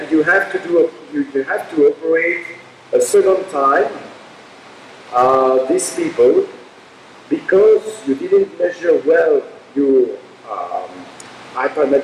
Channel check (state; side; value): identical; both; correlation 1.00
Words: you have to do you have to operate a second time these people, because you didn't measure well your